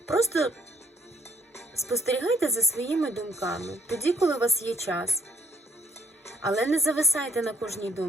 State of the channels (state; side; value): normal; both; correlation 0.65